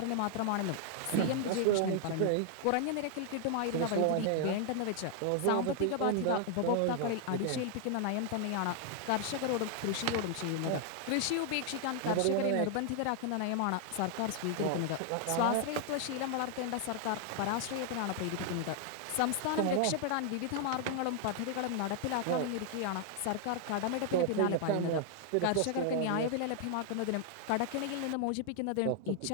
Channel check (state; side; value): different; both; correlation 0.00